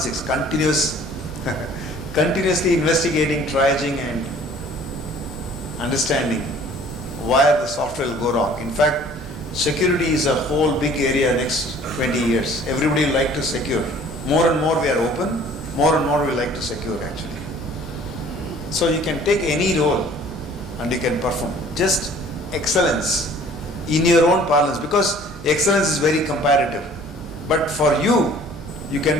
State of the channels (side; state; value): both; normal; correlation 0.52